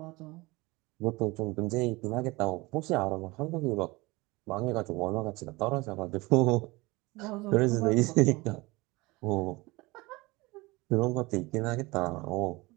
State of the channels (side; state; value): left; quieter; 22.7 dB